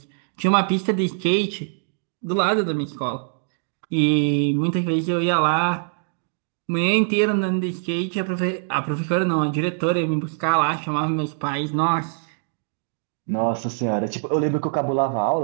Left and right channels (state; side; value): silent; left; digital silence